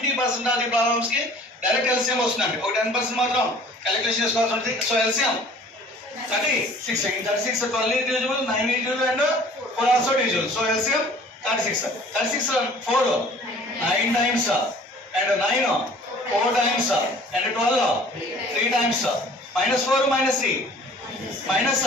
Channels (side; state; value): both; normal; correlation 0.50